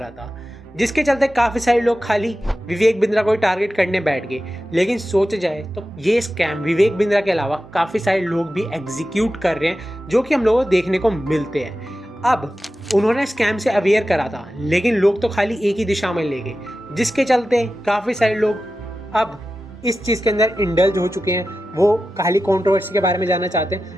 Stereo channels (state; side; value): normal; both; correlation 0.93